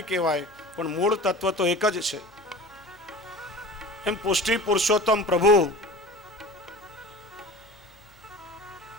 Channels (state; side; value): normal; both; correlation 0.38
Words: કહેવાય, પણ મૂળ તત્વ તો એક જ છે. એમ પુષ્ટિ પુરુષોત્તમ પ્રભુ